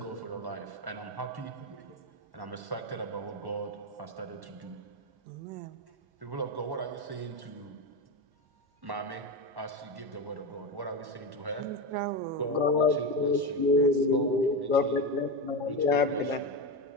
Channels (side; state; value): left; late; 1.1 ms